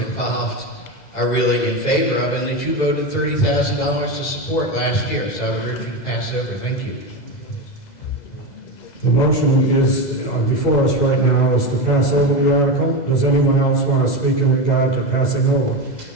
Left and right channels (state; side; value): late; right; 2.0 ms